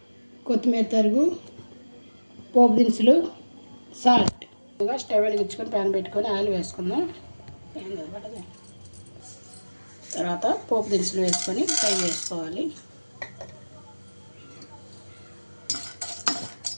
కొత్తిమీర తరుగు, పోపు దినుసులు, సాల్ట్. స్టవ్ వెలిగించుకొని ప్యాన్ పెట్టుకొని ఆయిల్ వేసుకుందాం. తర్వాత పోపు దినుసులు వేసుకొని ఫ్రై చేసుకోవాలి.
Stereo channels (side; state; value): both; inverted; correlation -1.00